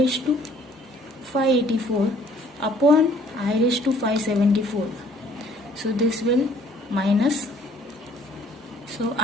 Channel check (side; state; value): both; normal; correlation 0.58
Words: to 584 upon I raised to 574. So this will minus. So